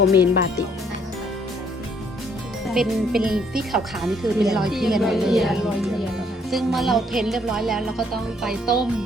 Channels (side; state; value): both; normal; correlation 0.66